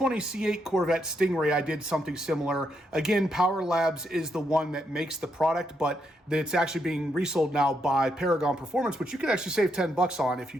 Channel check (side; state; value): both; normal; correlation 0.79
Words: C8 Corvette Stingray, I did something similar. Again, Power Labs is the one that makes the product, but it's actually being resold now by Paragon Performance, which you can actually save 10 bucks on if you